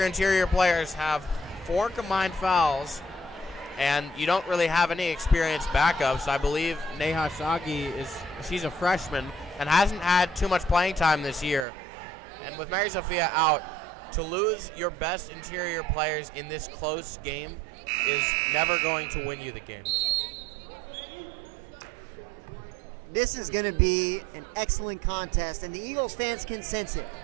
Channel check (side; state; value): left; drops out; at 11.7 s